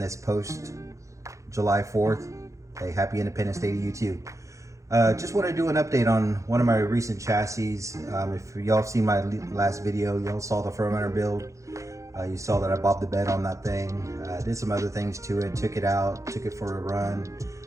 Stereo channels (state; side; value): late; left; 0.15 ms